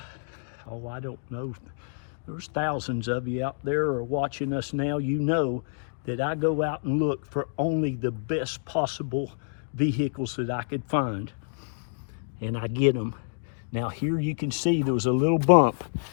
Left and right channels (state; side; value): silent; right; digital silence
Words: I don't know, there's thousands of you out there are watching us now, you know that I go out and look for only the best possible vehicles that I could find, and I get them. Now here you can see there was a little bump